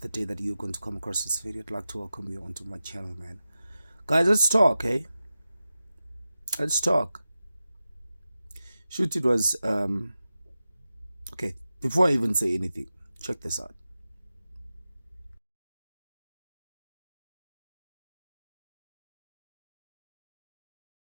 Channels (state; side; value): inverted; both; correlation -0.93